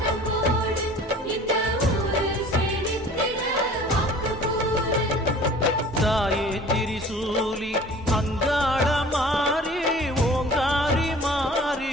தாயே திரிசூலி அங்காள மாறி ஓங்காரி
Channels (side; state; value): both; normal; correlation 0.46